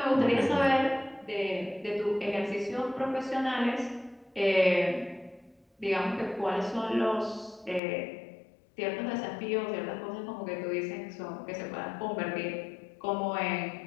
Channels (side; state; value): right; drops out; at 7.8 s